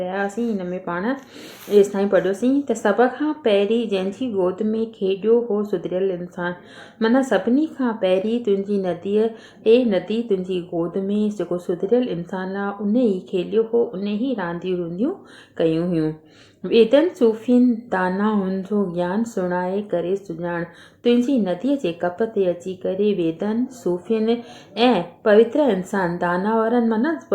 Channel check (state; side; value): identical; both; correlation 1.00